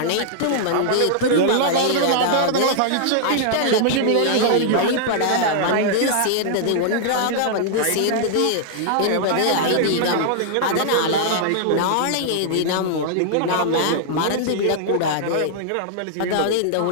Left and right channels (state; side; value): different; both; correlation -0.01